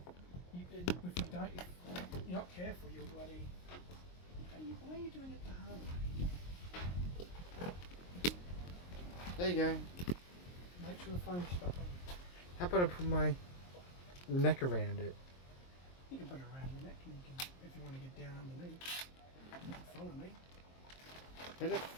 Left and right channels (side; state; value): right; late; 23 ms